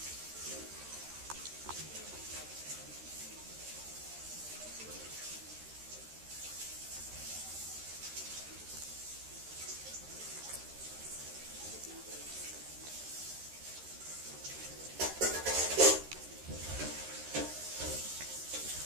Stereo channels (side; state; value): left; late; 13 ms